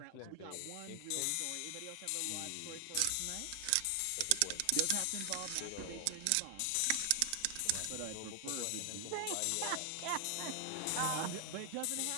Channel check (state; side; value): different; both; correlation 0.00